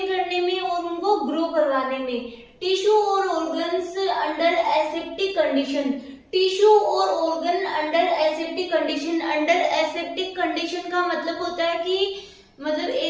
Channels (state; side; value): identical; both; correlation 1.00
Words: करने में और उनको ग्रो करवाने में। टिश्यू और organs under aseptic condition, tissue और organ under aseptic condition. Under aseptic condition का मतलब होता है कि मतलब